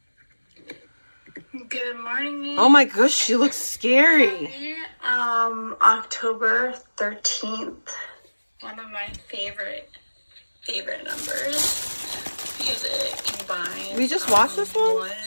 Good morning. Oh my gosh, she looks scary. October 13th. One of my favorite numbers because it combines. We just watched this one? 1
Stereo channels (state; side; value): inverted; both; correlation -1.00